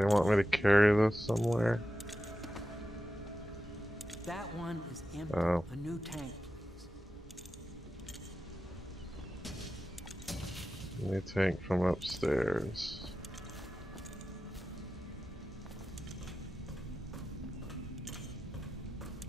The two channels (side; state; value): both; normal; correlation 0.92